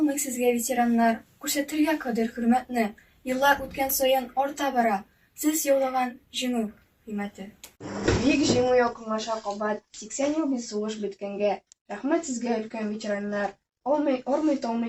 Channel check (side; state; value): both; identical; correlation 1.00